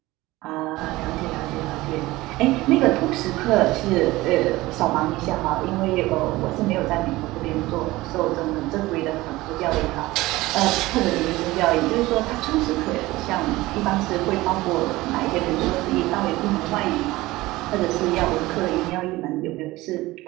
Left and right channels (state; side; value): quieter; left; 19.0 dB